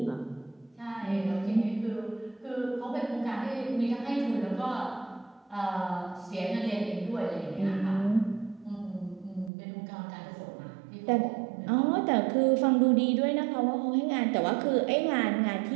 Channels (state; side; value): drops out; left; at 9.5 s